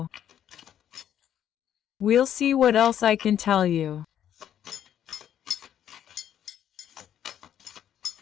We'll see what else I can tell you.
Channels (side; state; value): right; quieter; 10.2 dB